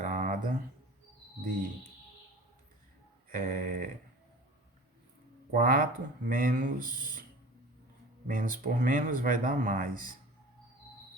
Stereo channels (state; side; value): normal; both; correlation 0.39